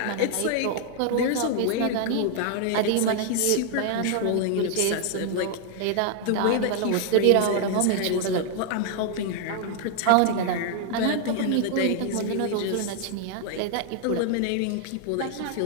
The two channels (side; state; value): both; different; correlation 0.00